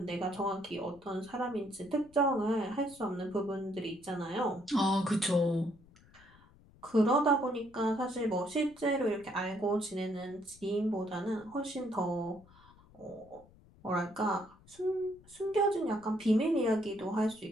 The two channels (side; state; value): left; noise; rumble, 26 dB below the sound